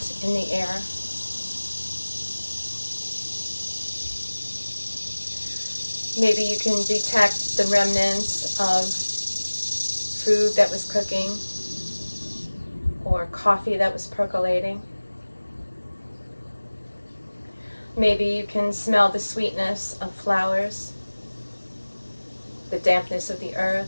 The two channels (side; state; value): both; inverted; correlation -1.00